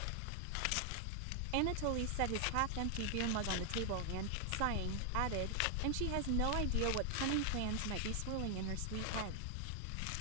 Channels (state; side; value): different; both; correlation 0.00